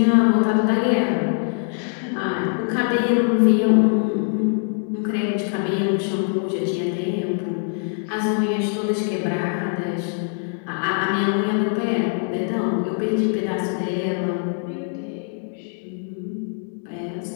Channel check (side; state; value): right; silent; 64 dB below the other